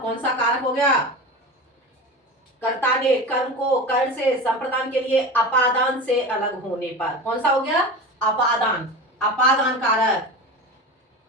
सा कारक हो गया? कर्ता ने कर्म को कर से संप्रदान के लिए अपादान से अलग होने पर कौन सा हो गया? अपादान। अपादान कारक।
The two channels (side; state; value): both; normal; correlation 0.29